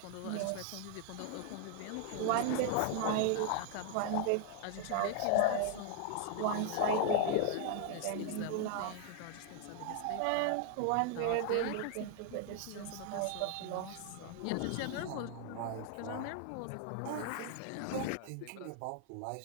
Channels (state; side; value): different; both; correlation 0.00